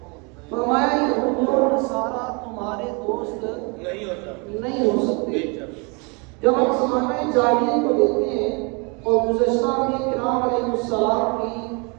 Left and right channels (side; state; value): left; quieter; 31.9 dB